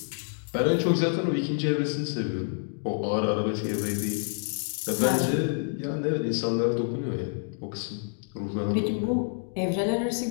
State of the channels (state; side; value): silent; right; digital silence